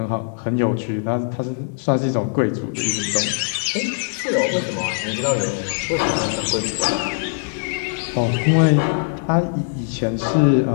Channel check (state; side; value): silent; right; digital silence